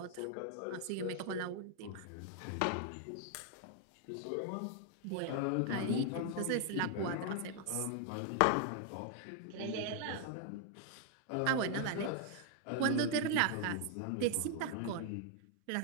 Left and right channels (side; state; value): both; different; correlation 0.00